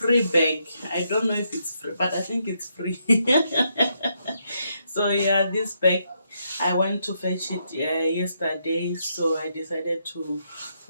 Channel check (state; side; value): inverted; both; correlation -0.78